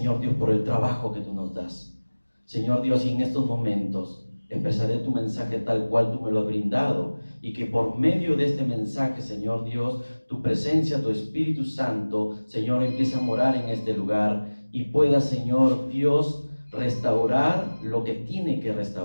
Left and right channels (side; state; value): both; inverted; correlation -1.00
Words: Dios, por el trabajo que tú nos das. Señor Dios, y en estos momentos expresaré tu mensaje tal cual tú me lo has brindado, y que por medio de este mensaje, Señor Dios, tu presencia, tu Espíritu Santo, Señor, empiece a morar en este lugar y pueda, Señor Dios, restaurar lo que tiene que